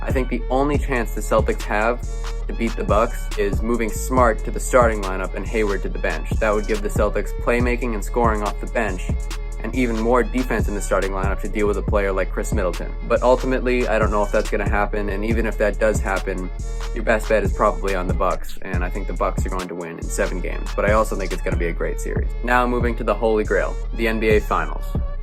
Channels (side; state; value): both; identical; correlation 1.00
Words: I think the only chance the Celtics have to beat the Bucks is moving Smart to the starting lineup and Hayward to the bench. That would give the Celtics playmaking and scoring off the bench, and even more defense in the starting lineup to deal with a player like Chris Middleton. But ultimately, I don't know if that's going to happen, and even if that does happen, your best bet is probably on the Bucks, and I think the Bucks are going to win in 7 games, but I also think it's going to be a great series. Now moving to the Holy Grail, the NBA Finals.